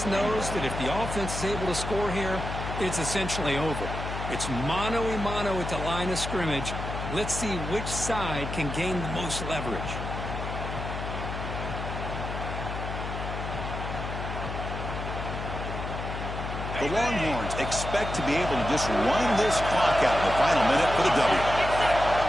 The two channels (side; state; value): left; noise; hum, 6 dB below the sound